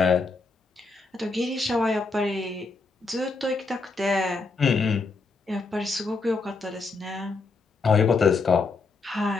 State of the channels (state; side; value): quieter; right; 3.9 dB